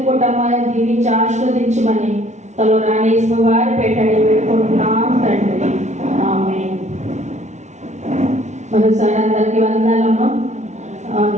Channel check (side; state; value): left; late; 0.33 ms